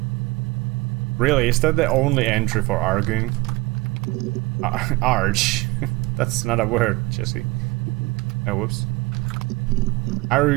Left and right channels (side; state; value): left; quieter; 23.0 dB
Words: Really, is that the only entry for arguing? Arge. That's not a word, Jesse. Oh, whoops.